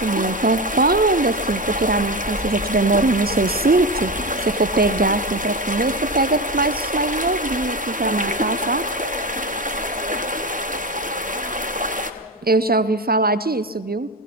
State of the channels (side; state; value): both; normal; correlation 0.20